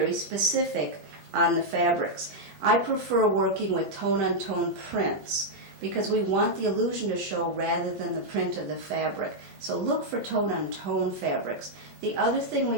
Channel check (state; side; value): late; left; 21 ms